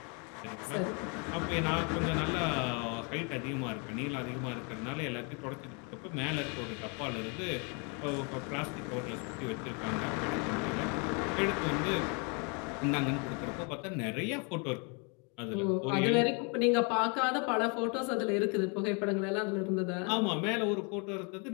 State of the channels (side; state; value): right; quieter; 34.6 dB